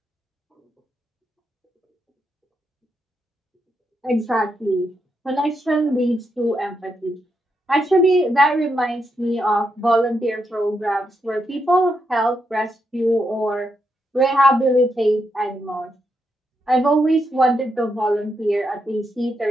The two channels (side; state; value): both; normal; correlation 0.82